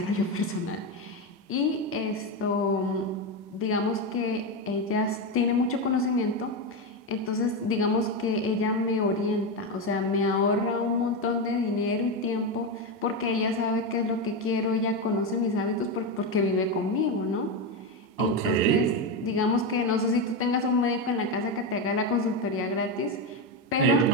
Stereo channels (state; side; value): normal; both; correlation 0.11